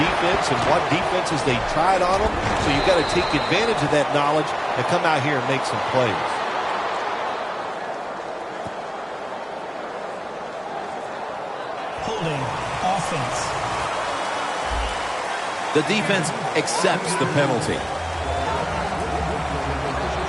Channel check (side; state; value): both; identical; correlation 1.00